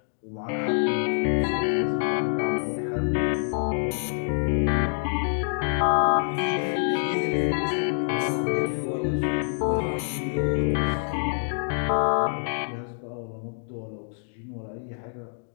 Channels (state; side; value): silent; right; digital silence